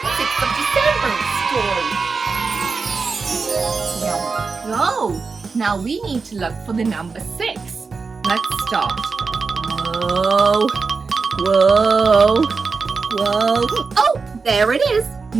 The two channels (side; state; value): left; quieter; 4.6 dB